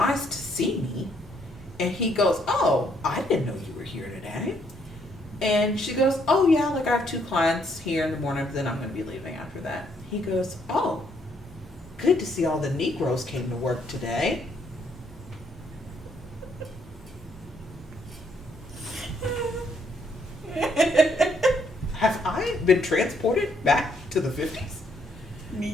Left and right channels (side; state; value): both; normal; correlation 0.70